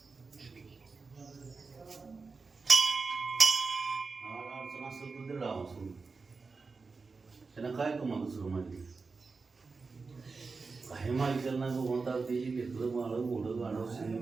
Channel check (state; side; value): quieter; left; 4.3 dB